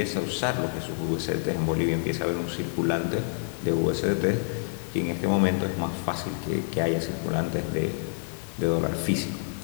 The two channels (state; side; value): silent; right; digital silence